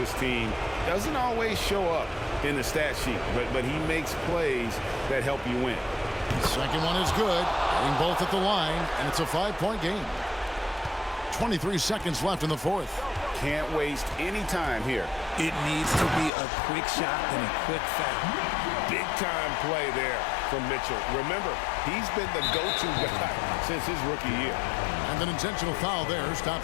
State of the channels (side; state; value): right; drops out; at 16.3 s